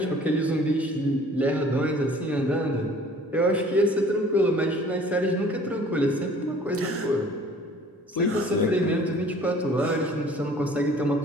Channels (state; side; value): normal; both; correlation 0.51